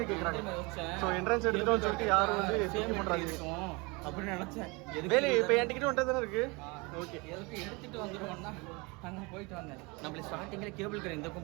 கேட்குறாங்க. ஸோ என்ட்ரன்ஸ் எடுத்துட்டோம்னு சொல்லிட்டு யாரும் வந்து சேம் பண்ணுறாங்க அப்படின்னு நினச்சேன். வேலை இப்போ என் டிக்கெட் வந்துட்டு தானே இருக்குது. ஓகே, எதுக்கு எடுத்துகிட்டு வந்துடுவோம்னா அங்கே போயிட்டு வந்தேன். நம்மள ஸ்டார்டிங்கில் கேபிள் கார் இந்த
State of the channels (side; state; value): left; quieter; 27.3 dB